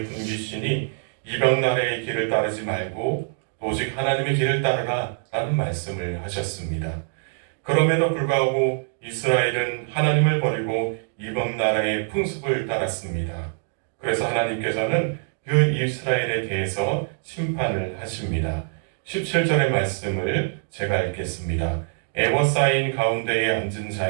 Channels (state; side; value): silent; left; 58 dB below the other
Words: 분기시니 이방 나라의 길을 따르지 말고 오직 하나님의 길을 따르라 라는 말씀을 하셨습니다. 그럼에도 불구하고 이스라엘은 하나님을 버리고 이방 나라의 풍습을 따랐습니다. 그래서 하나님께서는 그 이스라엘에 대해서 심판을 하십니다. 17절의 말씀을 제가 읽겠습니다. 에워싸인 가운데에 앉은